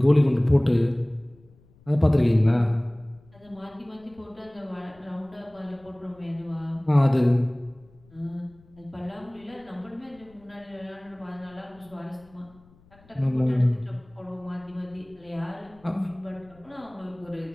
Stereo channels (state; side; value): noise; left; rumble, 28 dB below the sound